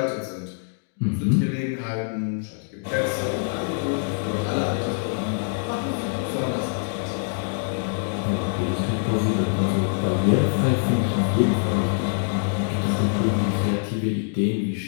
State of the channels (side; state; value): right; silent; digital silence